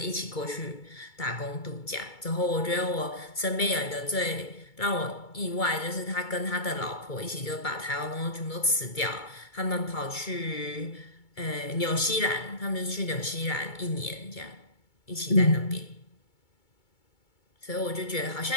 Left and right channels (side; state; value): right; late; 2.2 ms